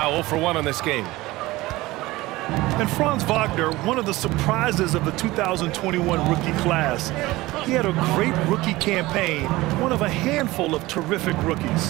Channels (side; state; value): left; quieter; 19.3 dB